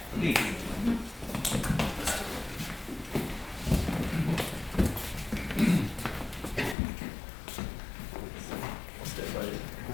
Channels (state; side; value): drops out; right; at 6.8 s